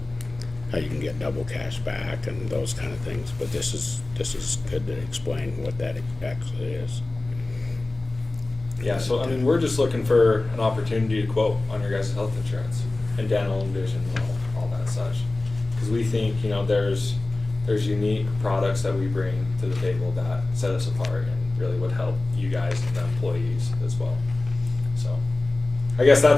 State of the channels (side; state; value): right; quieter; 3.1 dB